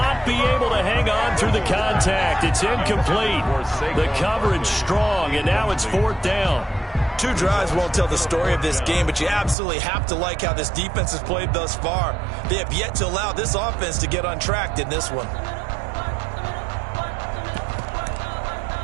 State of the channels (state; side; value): drops out; left; at 9.6 s